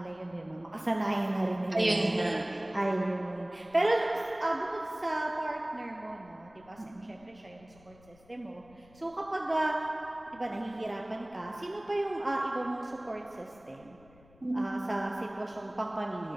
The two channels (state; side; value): noise; left; rumble, 26 dB below the sound